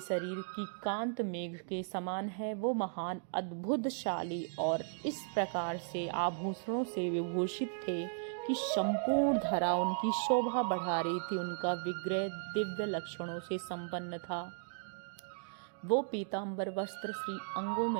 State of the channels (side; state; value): left; silent; digital silence